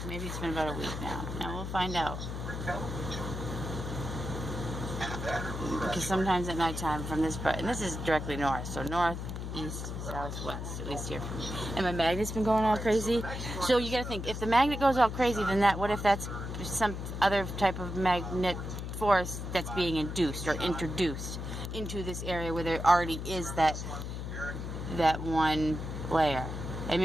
Maybe it's been about a week now. Now we'll find out. Because sometimes at nighttime from this part, and this is directly north, so north, east, south, west, at least here for me. And my magnet's been going all crazy. So you gotta think, if the magnet goes all crazy, then what if that's some other type of magnet force that's being induced or introduced into this area where there already is that one layer. And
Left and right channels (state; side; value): noise; left; hum, 6 dB below the sound